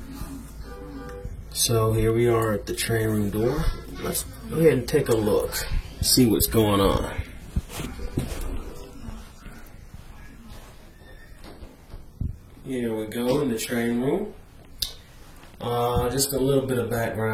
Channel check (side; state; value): both; identical; correlation 1.00